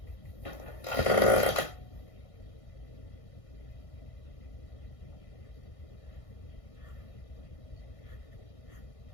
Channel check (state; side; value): late; right; 1.5 ms